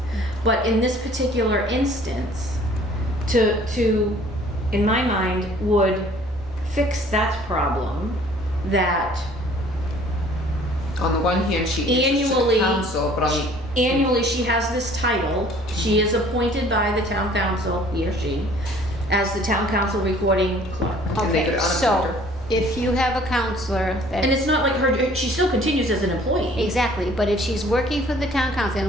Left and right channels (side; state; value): both; normal; correlation 0.54